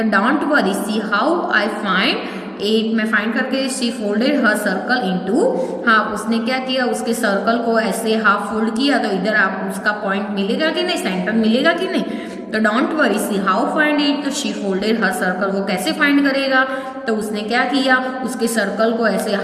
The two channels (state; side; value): identical; both; correlation 1.00